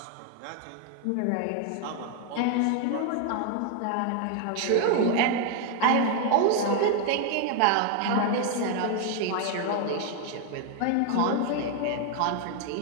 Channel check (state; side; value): different; both; correlation 0.01